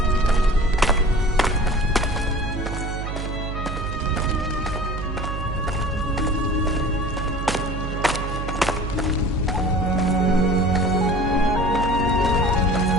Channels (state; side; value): noise; right; hum, 5 dB below the sound